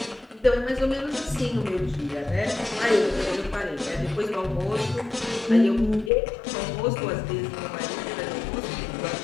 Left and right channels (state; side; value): drops out; right; at 6.1 s